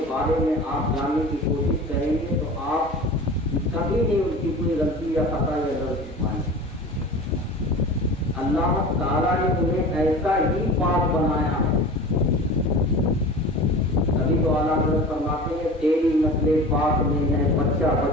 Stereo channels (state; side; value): normal; both; correlation 0.37